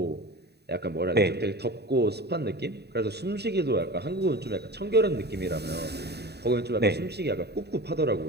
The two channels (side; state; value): left; late; 0.48 ms